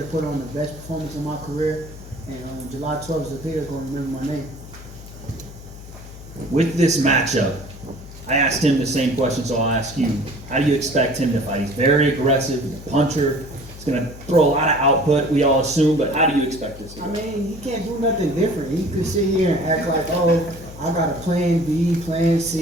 put on the best performance of my career. And July 12th, Zepeda is going to remember my name. With this matchup, I asked him the same question, so I'll ask you. How do you expect him to fight? He's very aggressive, he's a puncher. He's going to throw a lot of output, we all assume, but how do you expect this to go? I mean, he can't do nothing different. He could sit here and act like, oh, I got a plan B, plan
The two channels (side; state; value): left; noise; hum, 16 dB below the sound